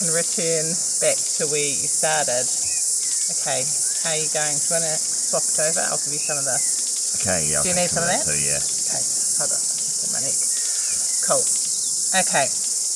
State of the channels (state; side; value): identical; both; correlation 1.00